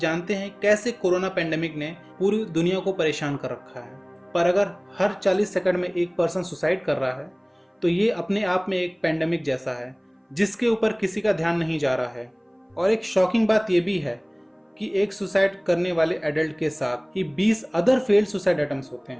हैं कैसे कोरोना पेंडेमिक ने पूरी दुनिया को परेशान कर रखा है, पर अगर हर 40 सेकंड में एक पर्सन सुसाइड कर रहा है तो ये अपने आप में एक पेंडेमिक जैसा है जिसके ऊपर किसी का ध्यान नहीं जा रहा है। और एक शॉकिंग बात यह भी है कि एक सुसाइड करने वाले एडल्ट के साथ ही 20 अदर फेल्ड सुसाइड अटेम्प्ट्स होते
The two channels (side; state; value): both; identical; correlation 1.00